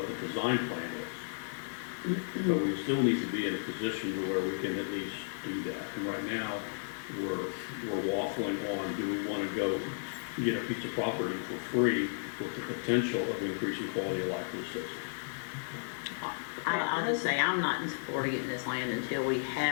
the design plan is. But we still need to be in a position to where we can at least do that. And right now, we're waffling on, do we want to go get a piece of property for free with the potential of increasing quality of life for the citizens? I'll just say, I'm not in support of getting this land until we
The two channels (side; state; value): right; silent; 55 dB below the other